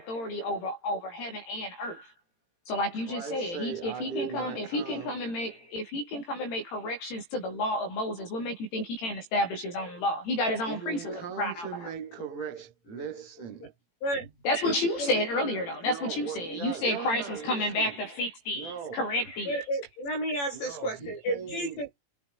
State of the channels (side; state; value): right; late; 18 ms